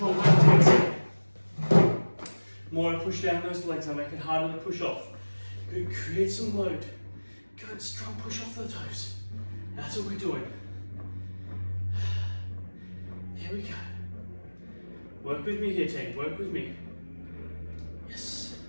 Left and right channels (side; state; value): both; inverted; correlation -1.00